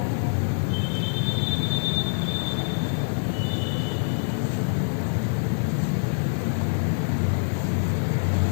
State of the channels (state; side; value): silent; right; 62 dB below the other